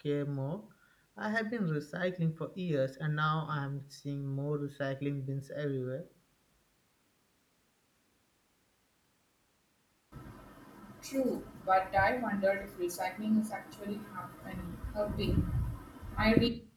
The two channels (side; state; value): both; identical; correlation 1.00